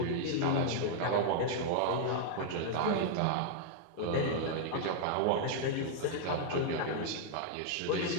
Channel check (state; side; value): different; both; correlation -0.01